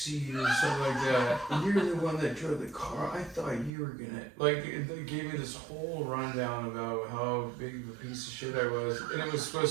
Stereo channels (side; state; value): left; drops out; at 3.7 s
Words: or something like that. You're the one that drove the car. I thought you were gonna like. They gave me this whole rundown about how big of a piece of shit I was, and it was